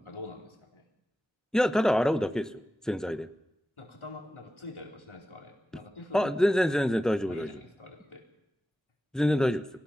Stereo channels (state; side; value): normal; both; correlation 0.94